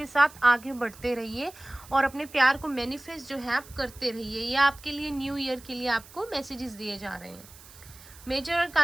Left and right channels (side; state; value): right; noise; hiss, 20 dB below the sound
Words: साथ आगे बढ़ते रहिए और अपने प्यार को मैनिफेस्ट जो है आप करते रहिए। ये आपके लिए न्यू ईयर के लिए आपको मैसेजेस दिए जा रहे हैं। मेजर